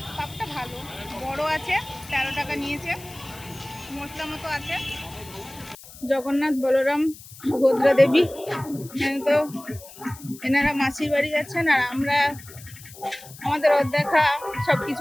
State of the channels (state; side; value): noise; left; hiss, 18 dB below the sound